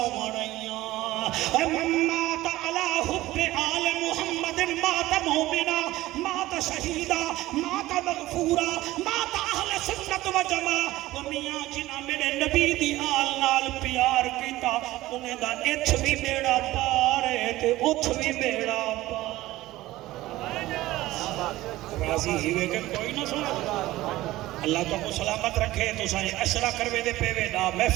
رہیاں اے مات علی حب آل محمد مات مومنا مات شہیدہ مات مغفورہ مات اہل سنت و جماع و میاں جنہ میرے نبی دی آل نال پیار کیتا انہیں دا اچھ بھی بیڑا پارے تے اچھ بھی بیڑا پارے راضی ہیوے کے کوئی نہ سنا اللہ تو کو سلامت رکھے تو سائیں اشرا کروے دے پیوے نا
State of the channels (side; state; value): left; quieter; 16.9 dB